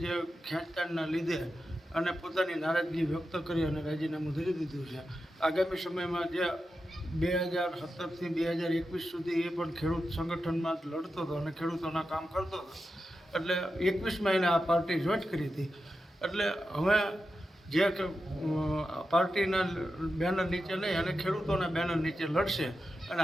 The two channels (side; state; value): both; normal; correlation 0.90